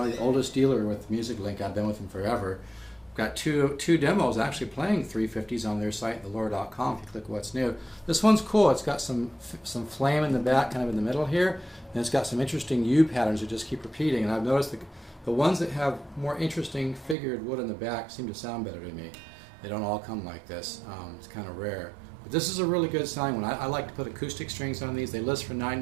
the oldest dealer with Music Link. I've been with them forever. Got two demos actually playing 350s on their site, velour.com, if you click what's new. This one's cool. It's got some flame in the back, kind of in the middle here, and it's got some interesting U patterns that just keep repeating. And I've noticed the ones that have more interesting figured wood in the back seem to sound better to me. They don't all come like this. It's kind of rare. But this is a really good sounding one. I like to put acoustic strings on these. They list for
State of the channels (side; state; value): left; drops out; at 17.2 s